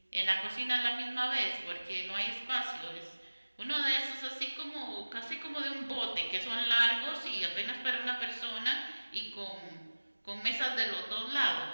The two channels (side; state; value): both; inverted; correlation -1.00